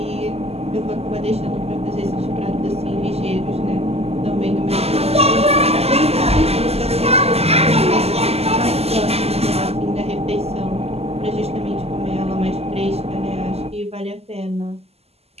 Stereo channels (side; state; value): left; late; 0.29 ms